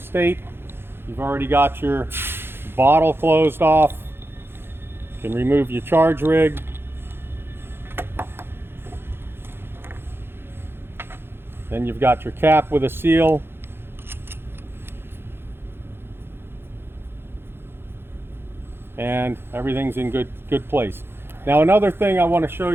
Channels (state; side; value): late; left; 0.11 ms